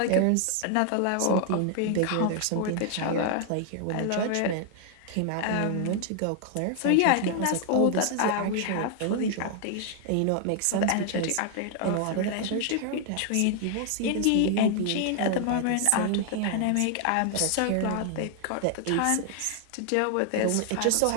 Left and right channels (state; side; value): different; both; correlation 0.00